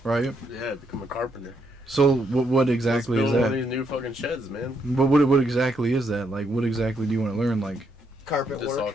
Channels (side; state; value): both; normal; correlation 0.75